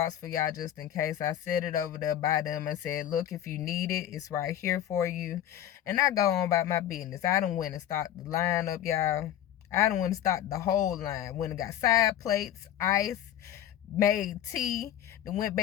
for y'all just in case. I set it over there by them and said, look, if you need it, it's right here for you. And I go on about my business. I done went and stocked the line up, y'all. I done went and stocked the whole line. Went and got side plates, ice, made tea, then went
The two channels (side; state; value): right; quieter; 11.3 dB